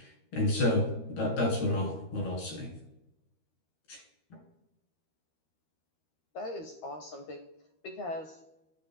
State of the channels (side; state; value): right; late; 13 ms